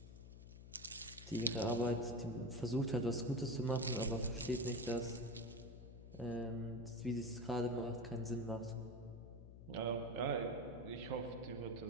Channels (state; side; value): noise; left; hum, 14 dB below the sound